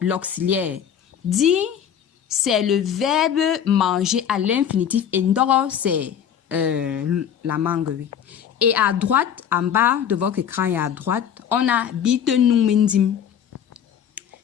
Di, c'est le verbe manger à l'infinitif. Et ndoro, c'est la mangue, oui. Et à droite, en bas de votre écran et à droite, on a bite nous mindim.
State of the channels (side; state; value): right; quieter; 8.8 dB